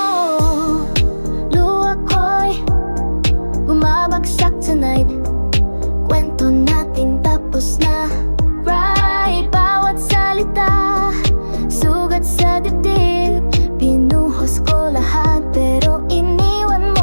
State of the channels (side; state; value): both; inverted; correlation -1.00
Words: Luha ko'y bumabagsak tonight. Kwento natin tapos na. Right, bawat salita sugat sa dibdib. Pinuhos ko lahat pero iniwan